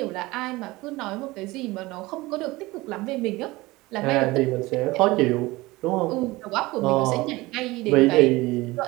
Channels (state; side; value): quieter; left; 20.7 dB